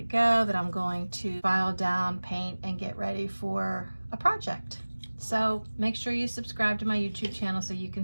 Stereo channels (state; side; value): inverted; both; correlation -1.00